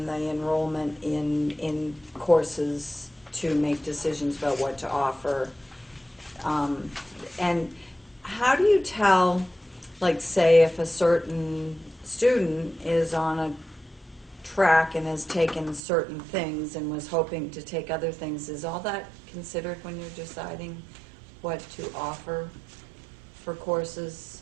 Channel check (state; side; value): drops out; left; at 15.8 s